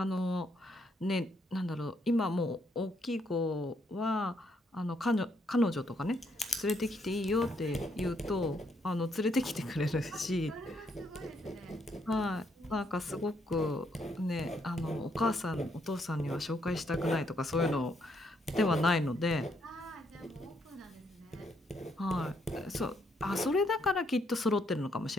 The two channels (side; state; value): both; normal; correlation 0.73